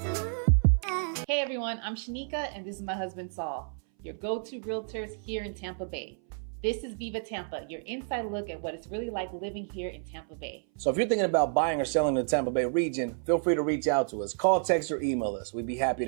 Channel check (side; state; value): left; silent; 58 dB below the other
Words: Hey everyone, I'm Shanika and this is my husband Saul, your go-to realtors here in Tampa Bay. This is Viva Tampa, your inside look at what it's really like living here in Tampa Bay. So if you're thinking about buying or selling in the Tampa Bay region, feel free to reach out to us. Call, text, or email us. We'd be happy